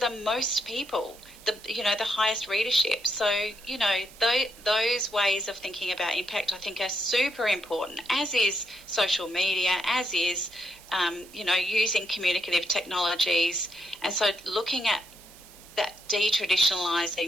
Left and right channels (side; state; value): right; noise; hiss, 21 dB below the sound